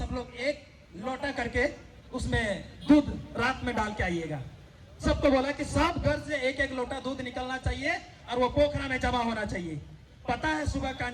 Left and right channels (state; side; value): identical; both; correlation 1.00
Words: लोग एक लोटा करके उसमें दूध रात में डाल के आइएगा। सबको बोला कि सब घर से एक एक लोटा दूध निकलना चाहिए और वो पोखरा में जमा होना चाहिए। पता है सुबह का